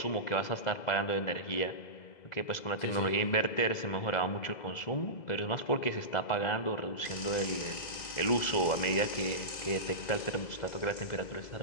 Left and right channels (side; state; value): right; late; 2.0 ms